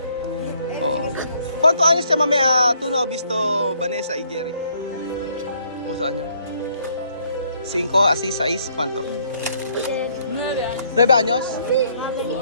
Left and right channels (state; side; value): inverted; both; correlation -0.67